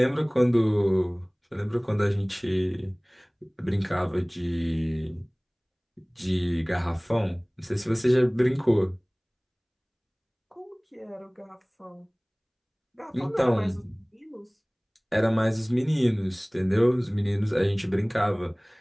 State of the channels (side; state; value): both; identical; correlation 1.00